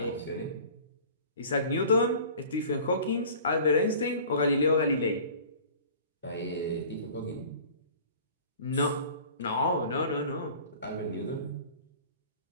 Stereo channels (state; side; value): inverted; both; correlation -0.44